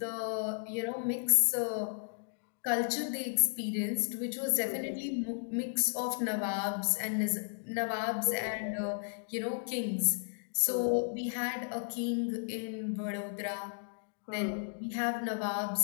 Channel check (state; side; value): silent; right; digital silence